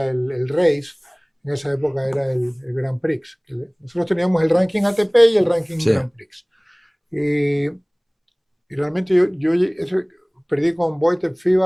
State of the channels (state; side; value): identical; both; correlation 1.00